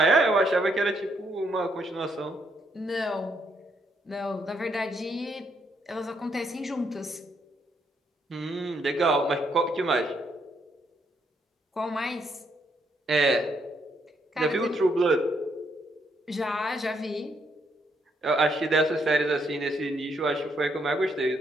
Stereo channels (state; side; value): normal; both; correlation 0.74